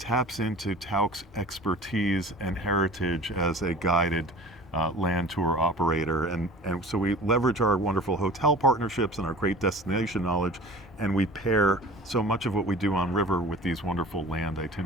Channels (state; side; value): normal; both; correlation 0.42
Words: into Tauck's expertise and heritage as a guided land tour operator. And so we leverage our wonderful hotel partnerships and our great destination knowledge, and we pair so much of what we do on river with these wonderful land